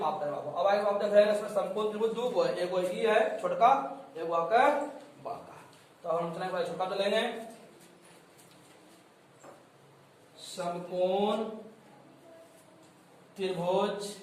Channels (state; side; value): identical; both; correlation 1.00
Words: करें बाबू। अब आगे आप देख रहे हैं इसमें समकोण त्रिभुज दो को है, एक वो ई है छोटका, एक वो आपका बड़का। तो हम चलेंगे छोटा तो लेंगे समकोण त्रिभुज